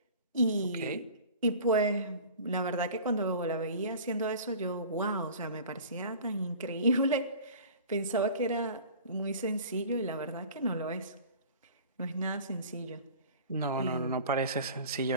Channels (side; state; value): both; inverted; correlation -0.42